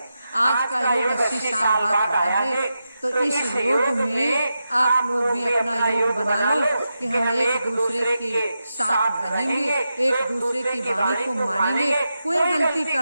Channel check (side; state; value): both; inverted; correlation -0.89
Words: आज का योग 80 साल बाद आया है, तो इस योग में आप लोग भी अपना योग बना लो कि हम एक दूसरे के साथ रहेंगे, एक दूसरे की वाणी को मानेंगे। कोई गलती